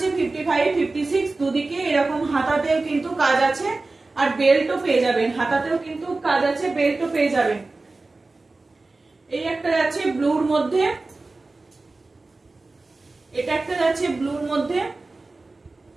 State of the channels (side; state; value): left; quieter; 3.4 dB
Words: 55, 56, দুদিকে এরকম হাতাতেও কিন্তু কাজ আছে আর বেল্টও পেয়ে যাবেন, হাতাতেও কিন্তু কাজ আছে, বেল্টও পেয়ে যাবেন। এই একটা যাচ্ছে ব্লুর মধ্যে, এটা একটা যাচ্ছে ব্লুর মধ্যে,